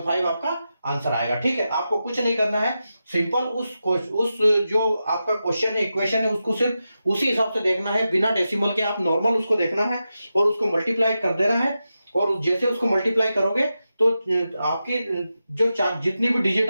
आपका आंसर आएगा। ठीक है, आपको कुछ नहीं करना है, सिंपल उस जो आपका क्वेश्चन है, इक्वेशन है, उसको सिर्फ उसी हिसाब से देखना है, बिना डेसिमल के आप नॉर्मल उसको देखना है और उसको मल्टीप्लाई कर देना है। और जैसे उसको मल्टीप्लाई करोगे तो आपकी जो जितनी भी डिजिट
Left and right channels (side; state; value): both; inverted; correlation -0.90